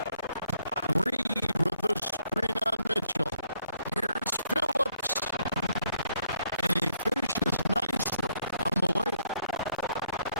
Reed with the screen on Mitchell. Here's Phillips. And he finishes nicely on the layup.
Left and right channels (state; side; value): inverted; both; correlation -0.71